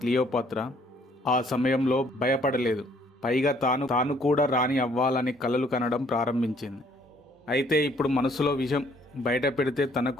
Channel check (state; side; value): normal; both; correlation 0.63